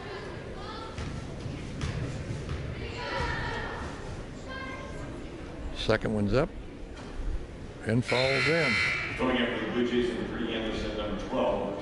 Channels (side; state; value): both; identical; correlation 1.00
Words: Second one's up and falls in. Going after the Bluejays, number 3, Anderson, number